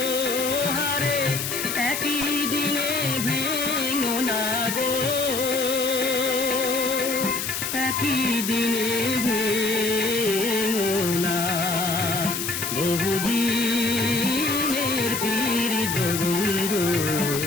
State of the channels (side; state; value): left; noise; hiss, 3 dB below the sound